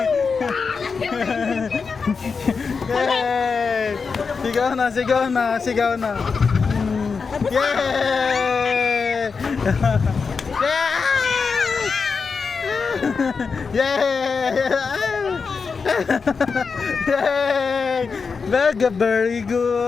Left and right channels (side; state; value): right; quieter; 5.2 dB